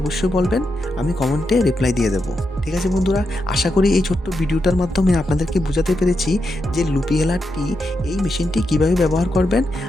বলবেন, আমি কমেন্টে রিপ্লাই দিয়ে দেবো। ঠিক আছে বন্ধুরা, আশা করি এই ছোট্ট ভিডিওটার মাধ্যমে আপনাদেরকে বোঝাতে পেরেছি যে লুপি হেলার টি এই মেশিনটি কিভাবে ব্যবহার করবেন,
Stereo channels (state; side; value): normal; both; correlation 0.85